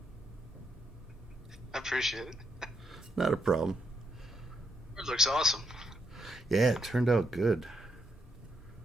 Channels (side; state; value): both; normal; correlation 0.78